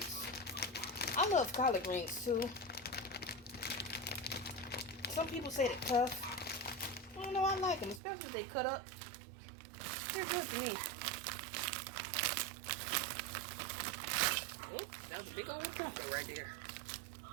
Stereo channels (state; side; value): drops out; left; at 8.0 s